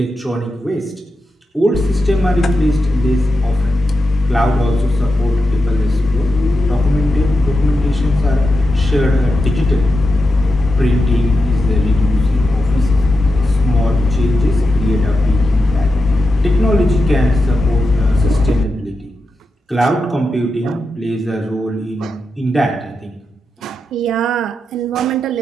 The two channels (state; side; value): normal; both; correlation 0.89